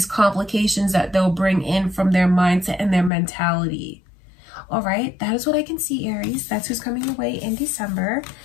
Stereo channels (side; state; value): right; drops out; at 3.1 s